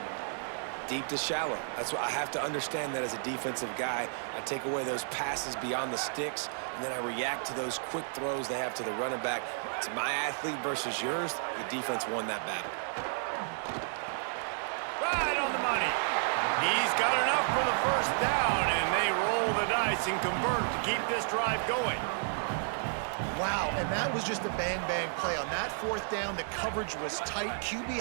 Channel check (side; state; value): left; silent; digital silence